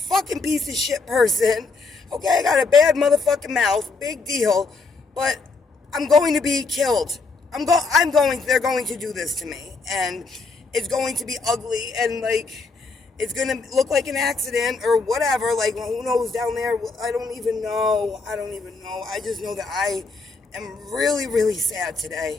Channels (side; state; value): right; quieter; 4.1 dB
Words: piece of shit person. Okay, I got a bad motherfucking mouth, big deal, but I'm going to be killed. They're going to do this to me, and it's going to be ugly, and like, it's going to look like an accident or whatever. Like, well, who knows down there? I don't even know. I just know that I am really, really sad